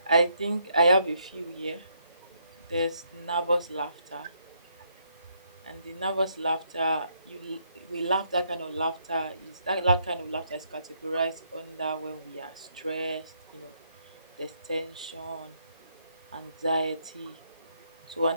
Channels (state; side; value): inverted; both; correlation -0.73